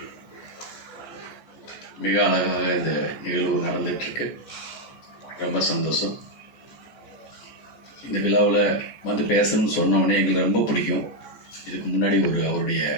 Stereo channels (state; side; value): late; right; 14 ms